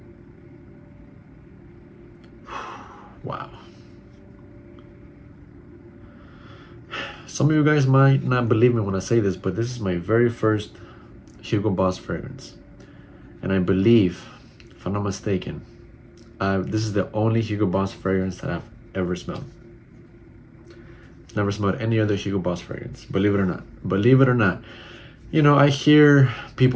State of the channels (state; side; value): identical; both; correlation 1.00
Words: wow. Some of you guys might not believe me when I say this, but this is my very first Hugo Boss fragrance. And I believe, if I'm not mistaken, this is the only Hugo Boss fragrance that I've ever smelled. Never smelled any other Hugo Boss fragrance, believe it or not. Believe it or not. You know, I hear